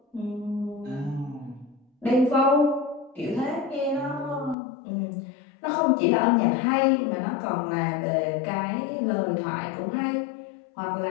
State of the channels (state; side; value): drops out; right; at 4.5 s